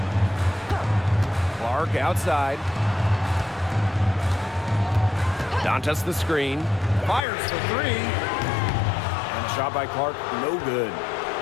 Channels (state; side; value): drops out; right; at 7.2 s